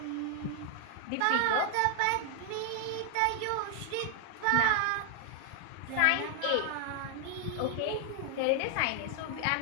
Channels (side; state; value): both; different; correlation 0.00